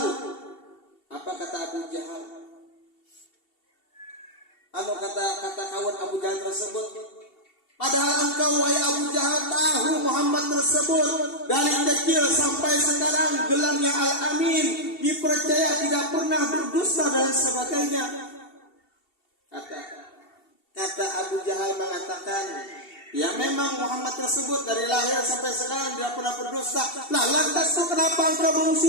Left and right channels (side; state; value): right; late; 2.7 ms